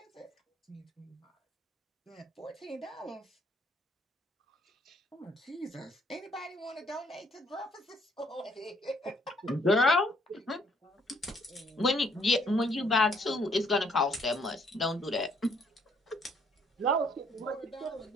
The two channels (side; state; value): both; normal; correlation 0.66